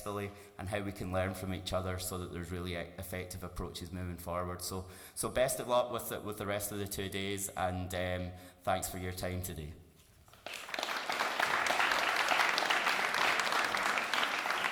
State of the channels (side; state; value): both; identical; correlation 1.00